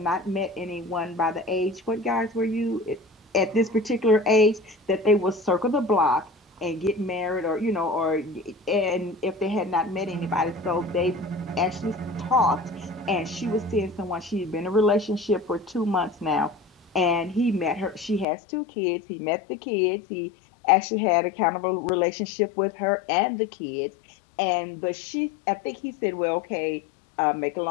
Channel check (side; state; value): right; drops out; at 18.2 s